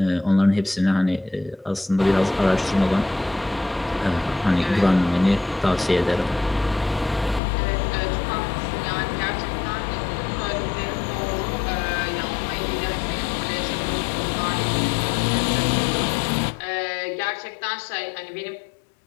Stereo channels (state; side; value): drops out; right; at 7.4 s